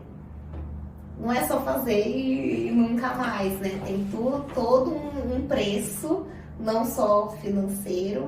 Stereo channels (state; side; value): identical; both; correlation 1.00